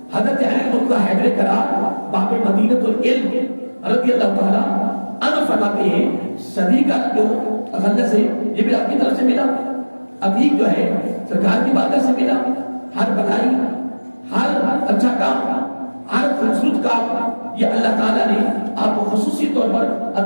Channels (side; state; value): both; inverted; correlation -1.00